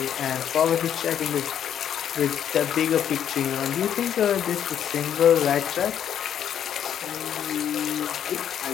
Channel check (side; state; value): right; quieter; 9.4 dB